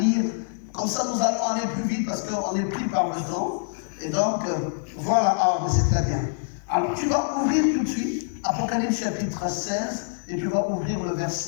Comme ça, nous allons aller plus vite parce qu'on est pris par le temps. Et donc, voilà, c'est très bien. Alors, tu vas ouvrir tout de suite Apocalypse chapitre 16 et tu vas ouvrir le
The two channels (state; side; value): silent; right; digital silence